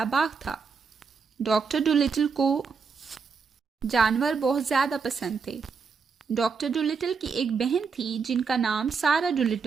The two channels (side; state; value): left; quieter; 5.4 dB